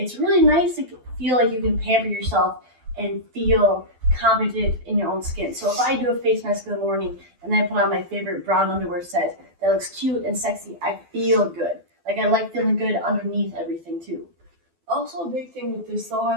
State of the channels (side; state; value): left; late; 12 ms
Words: really nice to feel like you can pamper yourself and feel confident in your own skin. So if I do a face mask in the morning and then I put on my favorite brown underwear set that looks cute and sexy, I feel good. Like I like feeling good underneath everything too. Also, a big thing with this though,